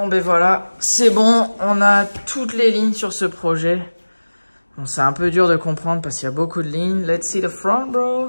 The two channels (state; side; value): inverted; both; correlation -1.00